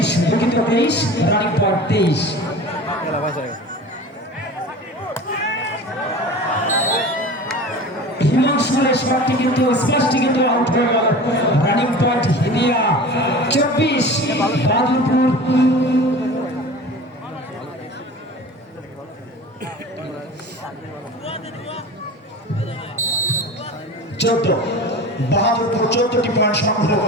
দুঃখিত 23 রানিং পয়েন্ট 23। হিমাংশুরের শটটি কিন্তু স্পষ্ট কিন্তু আউট হয়ে গেল। Running point Hidiya 24 Badurpur. বাহাদুরপুর 14টি পয়েন্ট সংগ্রহ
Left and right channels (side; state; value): both; normal; correlation 0.36